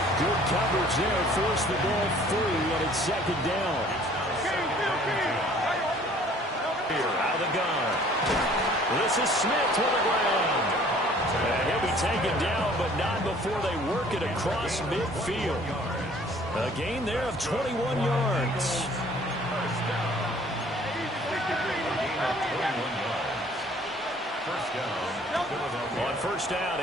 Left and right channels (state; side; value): normal; both; correlation 0.54